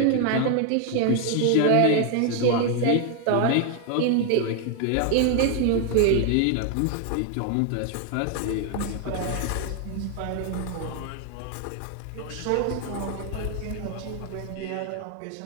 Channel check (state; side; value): different; both; correlation 0.00